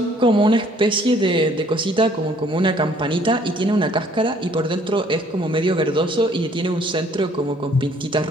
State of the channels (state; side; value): normal; both; correlation 0.60